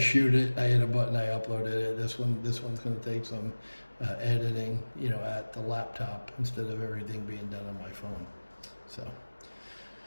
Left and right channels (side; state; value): both; inverted; correlation -1.00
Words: it, I hit a button, I uploaded it. This one's going to take some editing, at the laptop instead of everything being done on my phone. So,